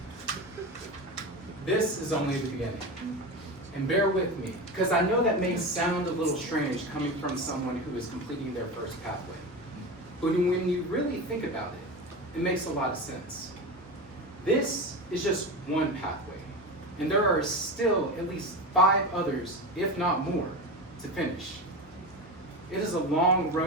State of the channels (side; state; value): both; normal; correlation 0.23